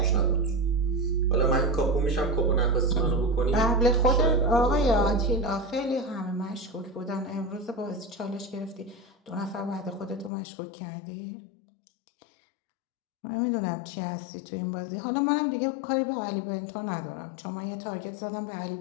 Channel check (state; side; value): drops out; right; at 10.3 s